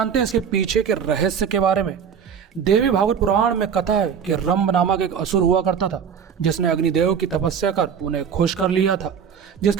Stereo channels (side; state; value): left; quieter; 7.3 dB